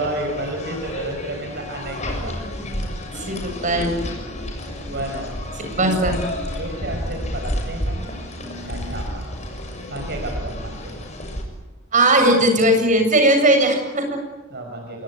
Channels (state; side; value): normal; both; correlation 0.14